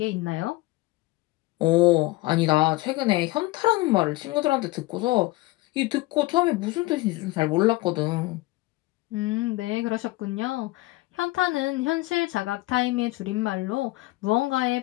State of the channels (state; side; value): quieter; right; 20.3 dB